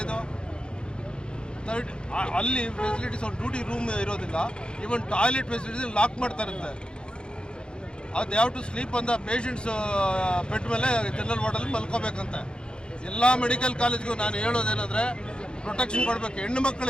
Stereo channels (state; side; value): late; right; 0.051 ms